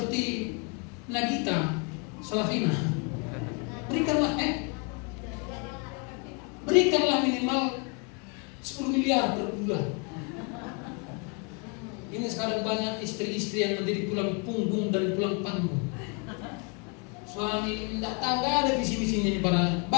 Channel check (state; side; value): quieter; right; 33.5 dB